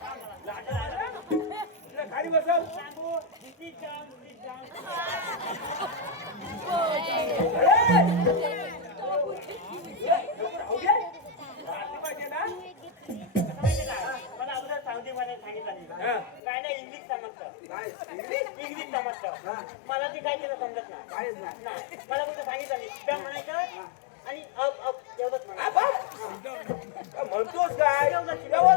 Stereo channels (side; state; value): right; drops out; at 16.4 s